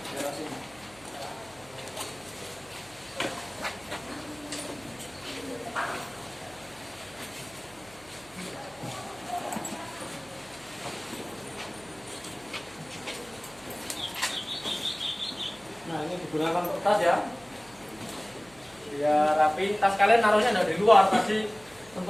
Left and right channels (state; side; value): noise; right; hum, 25 dB below the sound